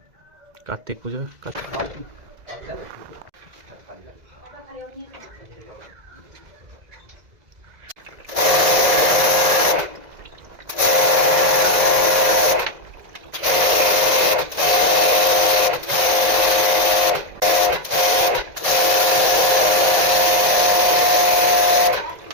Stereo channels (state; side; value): late; left; 2.0 ms